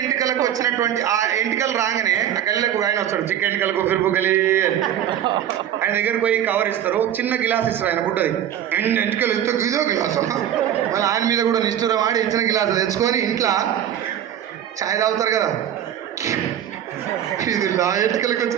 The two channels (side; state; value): left; quieter; 10.5 dB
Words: ఎంటికలకు వచ్చినటువంటి ఆ ఎంటికలు రాగానే ఆ గల్లీలకు ఆయన వస్తాడు, చిక్క ఎంటికలకు ఫిరుపు గలి అని. ఆయన దగ్గరికి పోయి కవర్ ఇస్తారు, చిన్న గిలాస్ ఇస్తారు, ఆయన పుట్టది. ఎంటికలు ఇస్తే ఇదో గిలాసు, మళ్ళీ ఆయన మీద కూడా నిష్ఠూరం ఆడి ఇచ్చిన గిలాసు తెచ్చుకొని ఇంట్లో ఛాయ్ తాగుతారు కదా, ఇది నా ఎంటికలకు